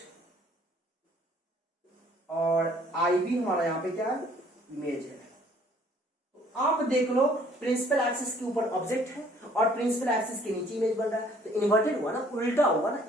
और आई भी हमारा यहाँ पे क्या है, इमेज है। तो आप देख लो प्रिंसिपल एक्सिस के ऊपर ऑब्जेक्ट है और प्रिंसिपल एक्सिस के नीचे इमेज बन रहा है, तो इन्वर्टेड हुआ ना, उल्टा हुआ ना,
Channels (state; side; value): normal; both; correlation 0.59